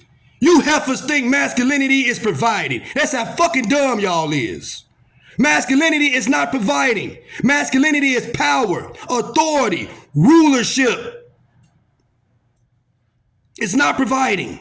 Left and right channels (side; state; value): both; identical; correlation 1.00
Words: You heifers think masculinity is providing. That's how fucking dumb y'all is. Masculinity is not providing. Masculinity is power, authority, rulership. It's not